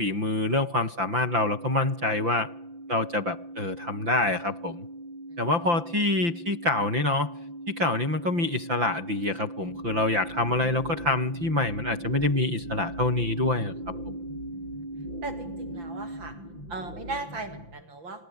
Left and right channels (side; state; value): left; late; 5.9 ms